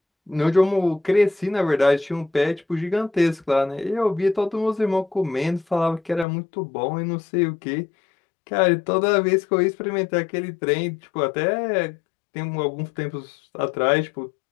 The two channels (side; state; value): right; drops out; at 6.2 s